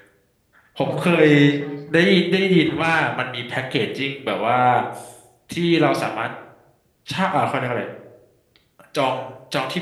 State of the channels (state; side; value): identical; both; correlation 1.00